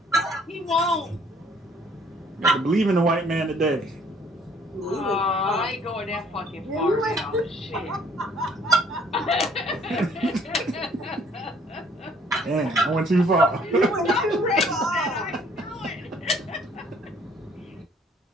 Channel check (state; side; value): normal; both; correlation 0.60